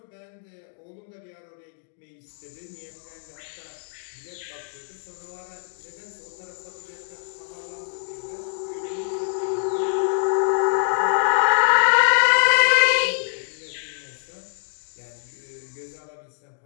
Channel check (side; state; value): right; silent; digital silence